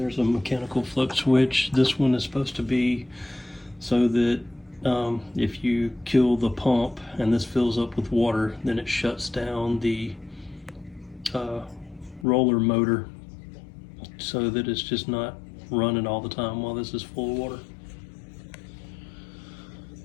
a mechanical flux switch. This one is supposed to be so that if you kill the pump and this fills up with water, then it shuts down the roller motor so that it's just not running all the time while this is full of water.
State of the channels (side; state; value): right; drops out; at 12.2 s